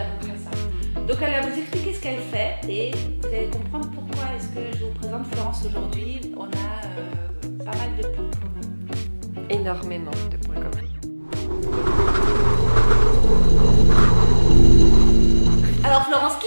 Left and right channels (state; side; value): inverted; both; correlation -1.00